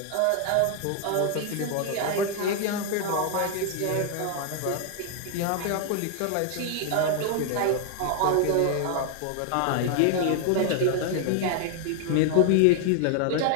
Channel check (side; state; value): both; different; correlation 0.00